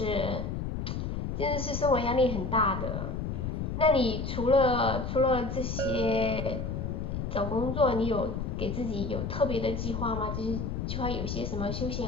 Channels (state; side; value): noise; left; rumble, 3 dB below the sound